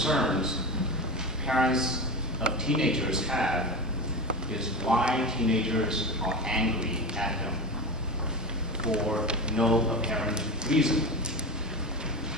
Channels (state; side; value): normal; both; correlation 0.24